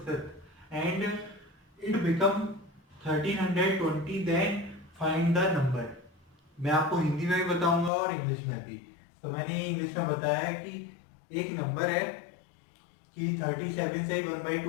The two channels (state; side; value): drops out; right; at 7.9 s